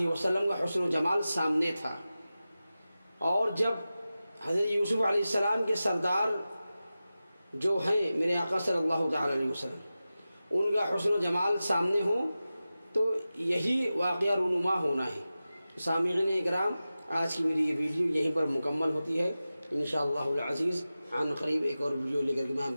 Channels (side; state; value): both; inverted; correlation -0.95